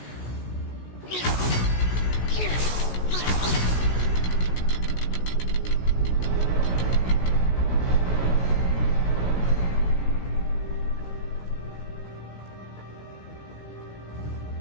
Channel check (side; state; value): right; late; 16 ms